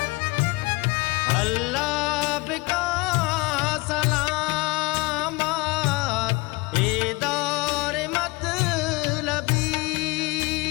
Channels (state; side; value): quieter; right; 24.3 dB